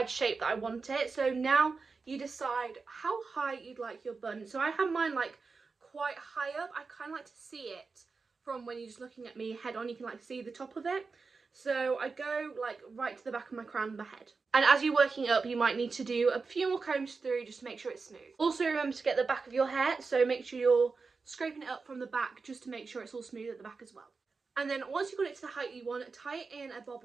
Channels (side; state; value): left; quieter; 4.5 dB